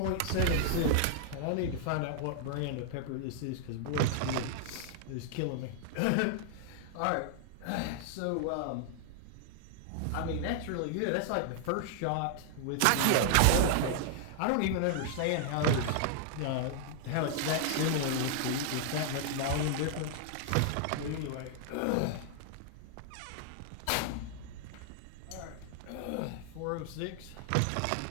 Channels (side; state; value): both; different; correlation 0.00